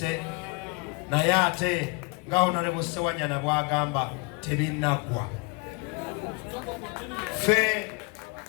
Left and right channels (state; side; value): quieter; right; 28.8 dB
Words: naye ate nga Honorable Ssewanyana bw'agamba tebinnaggwa. Ffe